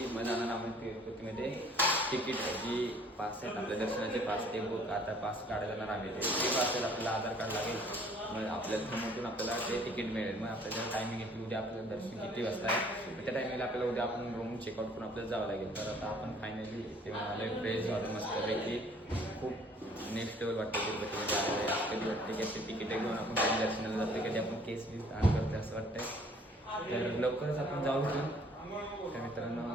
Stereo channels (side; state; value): both; normal; correlation 0.57